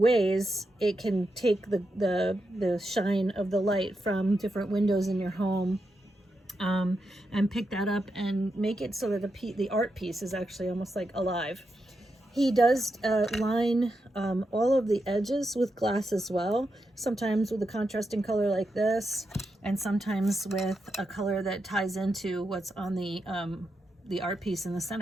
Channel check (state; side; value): normal; both; correlation 0.86